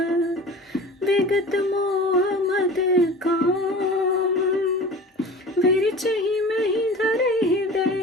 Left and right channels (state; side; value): normal; both; correlation 0.38